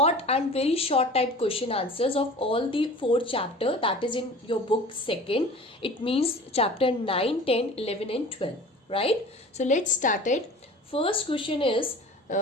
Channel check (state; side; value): normal; both; correlation 0.41